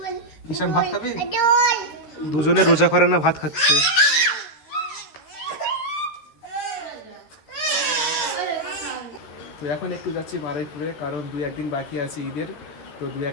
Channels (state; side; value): late; right; 13 ms